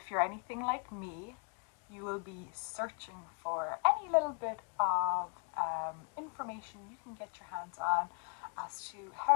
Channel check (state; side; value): quieter; right; 37.8 dB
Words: you're anything like me, you will be searching for any little bit of information you can get your hands on as to